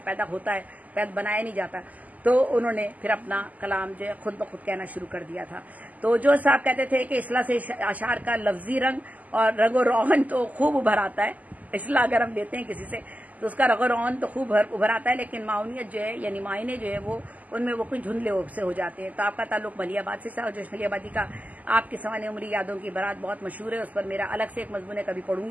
पैदा होता है, पैदा बनाया नहीं जाता, तो उन्होंने फिर अपना कलाम जो है खुद ब खुद कहना शुरू कर दिया था। तो जो साहब कहते थे कि इस्लाह से अशार का लफ्जी रंग और रंगो रोगन तो खूब उभर आता है। इस्लाह अगर हम लेते हैं किसी से तो उसका रगो रोगन तो खूब उभर आता है, लेकिन माउनियत जो है यानी मायने जो है वो उनमें वो कुछ धुंधले से हो जाते हैं। तो आपका ताल्लुक मलियाबाद से था, और जोश मलियाबादी का आपकी सवाने उम्री यादों की बारात बहुत मशहूर है। उस पर मेरा अलग से एक मजमून कभी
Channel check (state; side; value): late; left; 0.077 ms